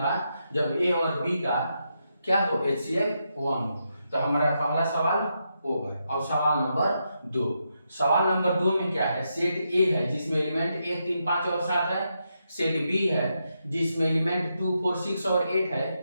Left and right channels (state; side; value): inverted; both; correlation -0.83